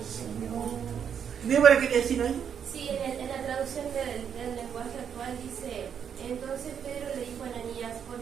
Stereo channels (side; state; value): left; quieter; 7.9 dB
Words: ¿Débora quería decir algo? Sí, en la traducción del lenguaje actual dice, entonces Pedro le dijo a Ananías, ¿por